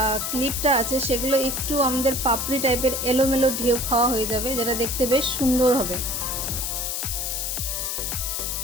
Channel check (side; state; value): left; noise; hiss, 2 dB below the sound